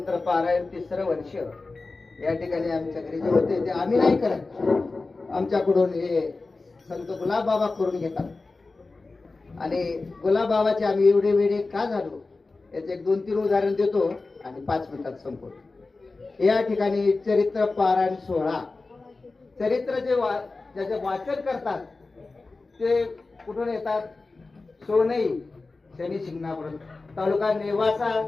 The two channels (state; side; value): quieter; right; 3.6 dB